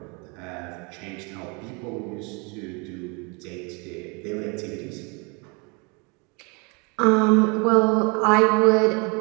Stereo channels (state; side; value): quieter; left; 31.3 dB